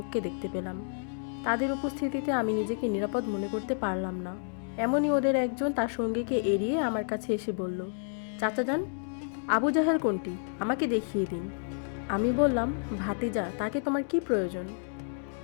দেখতে পেলাম। তাদের উপস্থিতিতে আমি নিজেকে নিরাপদ মনে করতে পারলাম না। এমনই ওদের একজন তার সঙ্গীকে এড়িয়ে আমার কাছে এসে বলল, চাচা যান, আবু জাহেল কোনটি, আমাকে দেখিয়ে দিন। আমি বললাম, ভাতিজা, তাকে তোমার কি প্রয়োজন?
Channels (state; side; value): silent; right; digital silence